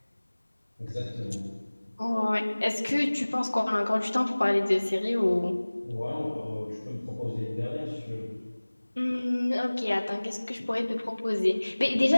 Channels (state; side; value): inverted; both; correlation -1.00